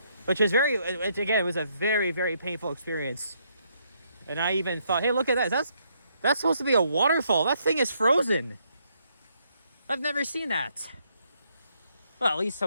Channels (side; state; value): both; inverted; correlation -0.73